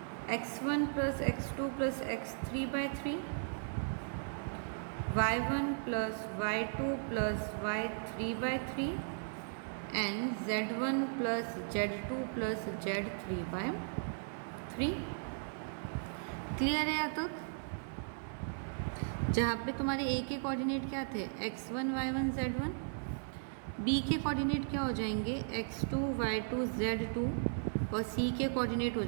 x1 plus x2 plus x3/3, y1 plus y2 plus y3/3 and z1 plus z2 plus z3/3। Clear है यहाँ तक? जहाँ पे तुम्हारे a के कोऑर्डिनेट क्या थे, x1 y1 z1, b के कोऑर्डिनेट क्या हो जाएंगे, x2 y2 z2, और c के कोऑर्डिनेट हो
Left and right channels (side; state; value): left; silent; digital silence